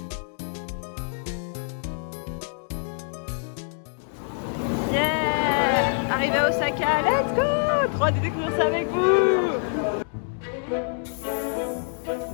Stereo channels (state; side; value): silent; right; digital silence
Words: Yeah! Arrivé à Osaka, let's go! Trop hâte de découvrir ça avec vous!